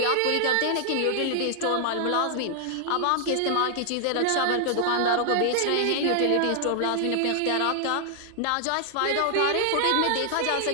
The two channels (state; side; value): different; both; correlation 0.00